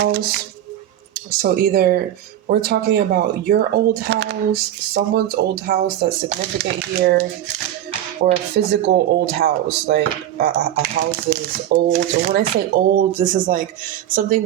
So either we're talking about your old house, someone's old house that's significant here, or a physical old house, like a house that is old. And when I say old, this is like something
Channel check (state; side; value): quieter; left; 11.9 dB